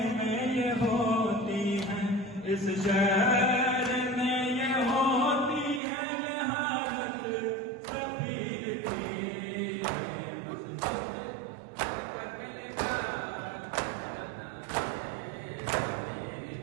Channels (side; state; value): left; drops out; at 5.8 s